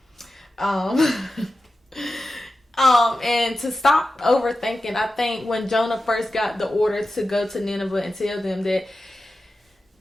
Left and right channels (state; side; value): normal; both; correlation 0.93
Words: And to stop overthinking, I think when Jonah first got the order to go to Nineveh and tell them that,